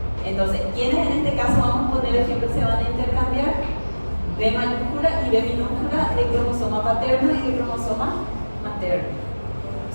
Entonces, ¿quiénes en este caso vamos a poner ejemplo se van a intercambiar? B mayúscula y B minúscula de cromosoma paterno y de cromosoma materno.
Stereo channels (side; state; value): both; inverted; correlation -1.00